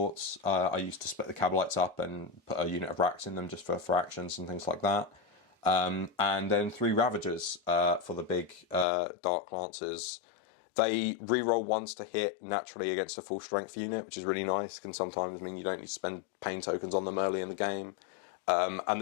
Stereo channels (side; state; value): right; drops out; at 8.8 s